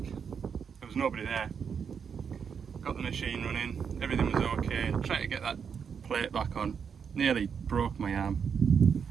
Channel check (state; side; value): quieter; left; 6.8 dB